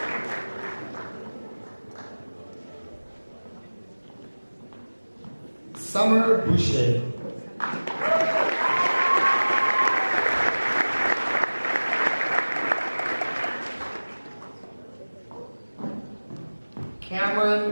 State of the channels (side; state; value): both; inverted; correlation -1.00